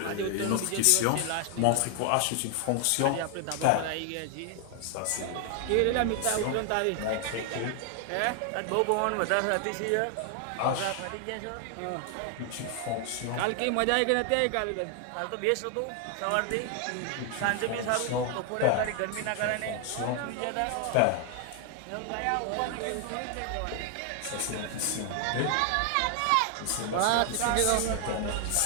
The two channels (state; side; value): different; both; correlation 0.00